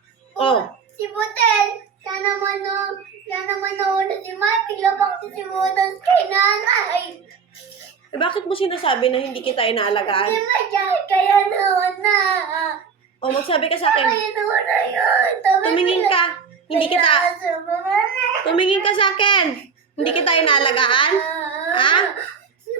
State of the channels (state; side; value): quieter; left; 6.0 dB